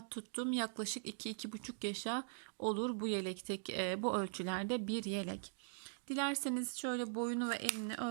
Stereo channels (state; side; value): silent; left; digital silence